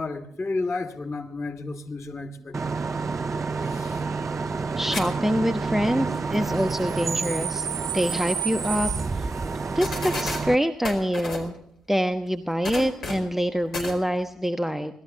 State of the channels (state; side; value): normal; both; correlation 0.90